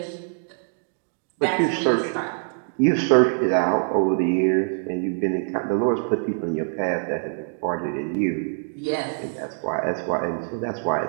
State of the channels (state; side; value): silent; left; 62 dB below the other